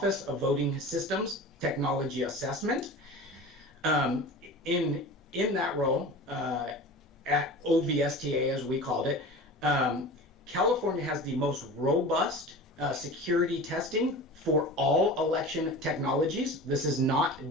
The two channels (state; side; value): normal; both; correlation 0.35